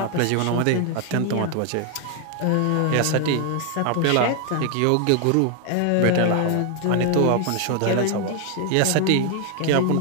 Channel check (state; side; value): different; both; correlation 0.00